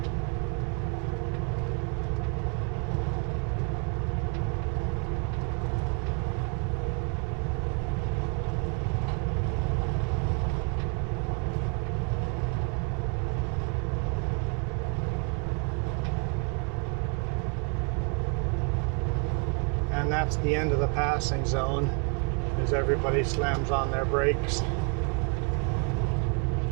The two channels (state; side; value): quieter; left; 38.2 dB